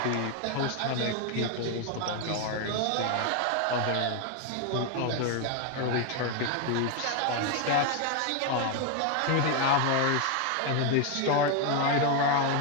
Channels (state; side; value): different; both; correlation 0.01